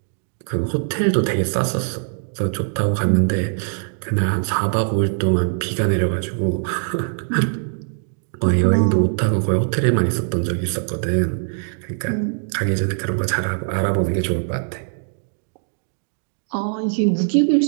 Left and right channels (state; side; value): silent; left; digital silence